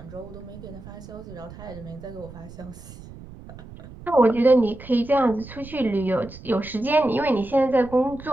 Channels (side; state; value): right; noise; rumble, 16 dB below the sound